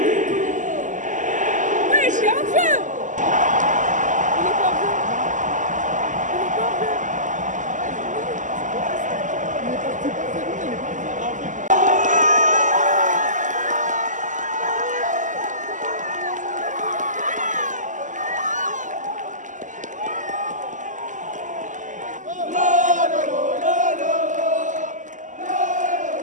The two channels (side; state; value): left; late; 0.37 ms